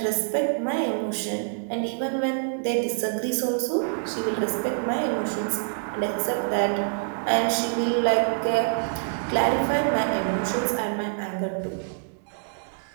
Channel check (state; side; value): silent; left; digital silence